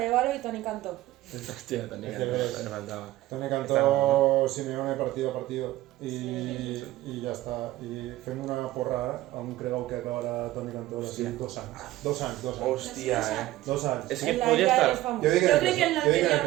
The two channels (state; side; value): quieter; left; 16.2 dB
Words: i Toni Cantó. Hòstia, tenia Este ves. me faltava. Toni cantó Simeone partido a partido y ya está. Y fem una porra a un cregau que acabarà Toni Cantó així 2 anys. 2 anys, 2 anys. Hòstia, 2 anys. És que En la podria isla estar... dels famosos. Jo dic Jo crec que en jo dic en el